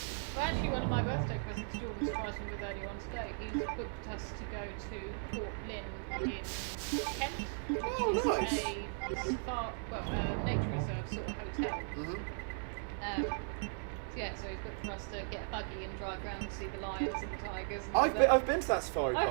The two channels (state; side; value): silent; left; 53 dB below the other